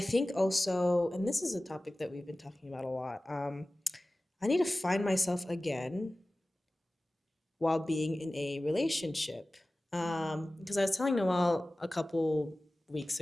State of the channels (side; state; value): both; normal; correlation 0.97